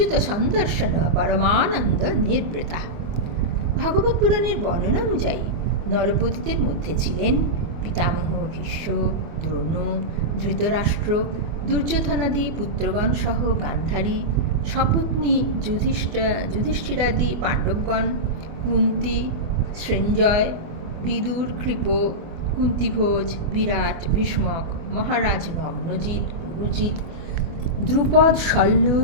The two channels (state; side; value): late; left; 24 ms